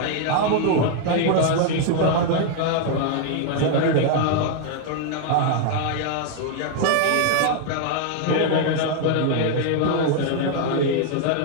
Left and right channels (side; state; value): both; different; correlation 0.00